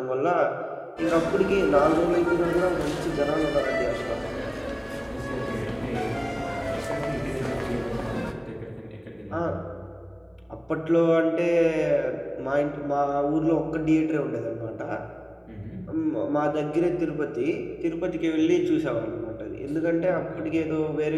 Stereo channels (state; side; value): identical; both; correlation 1.00